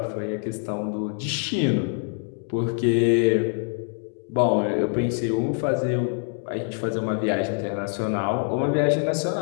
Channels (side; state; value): right; silent; 55 dB below the other